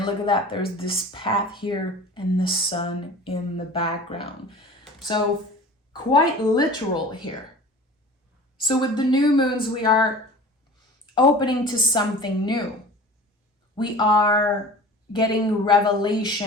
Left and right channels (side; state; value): both; normal; correlation 0.40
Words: look at that. There's this path here and the Sun in the background. So quite literal here. So with the new moons, we are opening to something new. We are getting